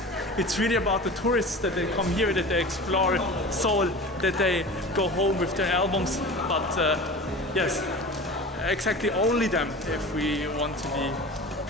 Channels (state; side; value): normal; both; correlation 0.35